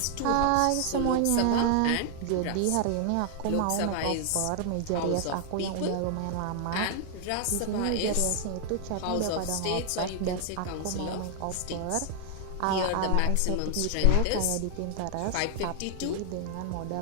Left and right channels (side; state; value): both; different; correlation 0.00